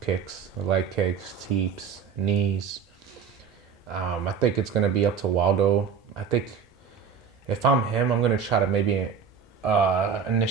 kicks, the leg kicks, teeps, knees. I think it's gonna be up to Waldo. I think if I'm him, I'm gonna try to maybe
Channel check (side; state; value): left; quieter; 6.6 dB